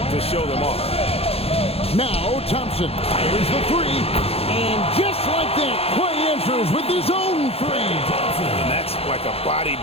to show them off. Now Thompson fires the 3, and just like that, Klay answers with his own 3. And that's like a body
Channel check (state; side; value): late; right; 0.29 ms